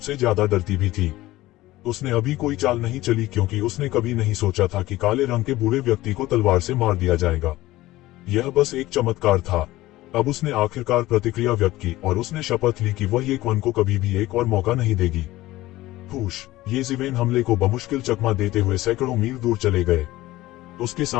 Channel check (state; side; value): quieter; right; 17.3 dB